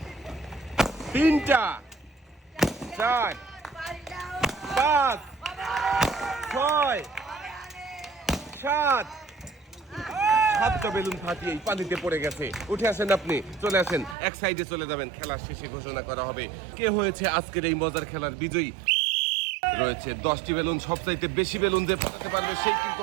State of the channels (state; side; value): drops out; left; at 14.2 s